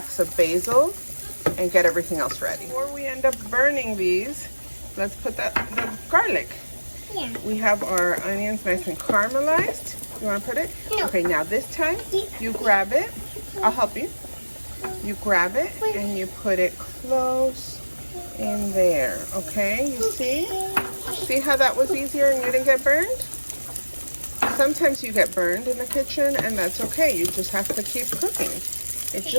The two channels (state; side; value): inverted; both; correlation -1.00